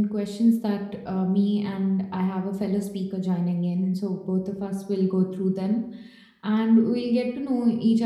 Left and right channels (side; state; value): both; identical; correlation 1.00